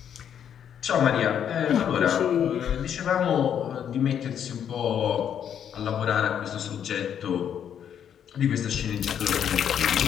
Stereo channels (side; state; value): right; quieter; 8.9 dB